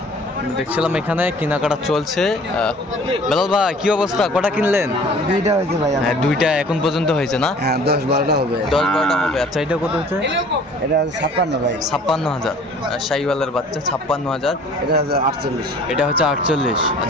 দেখছিলাম এখানে কেনাকাটা চলছে। বেলাল ভাই কি অবস্থা, কটা কিনলেন? 2টা হয়েছে ভাই। হ্যাঁ 2টা এখন পর্যন্ত হয়েছে না? হ্যাঁ 10-12টা হবে। 10-12টা হবে। আচ্ছা এটা কত হচ্ছে? এটা 56 ভাই। 56,000। শাহীওয়ালের বাচ্চা 56,000। এটা 48। এটা হচ্ছে 48।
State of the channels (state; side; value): normal; both; correlation 0.50